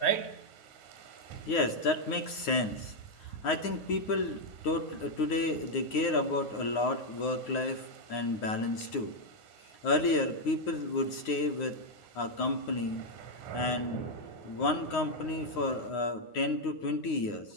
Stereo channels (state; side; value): late; right; 9.6 ms